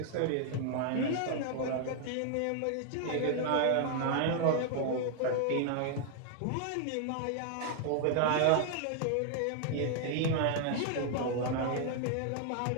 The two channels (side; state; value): both; different; correlation 0.00